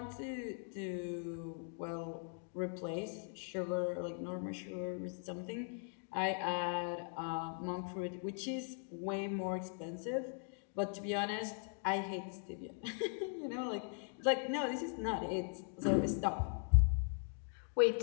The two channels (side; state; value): right; silent; 51 dB below the other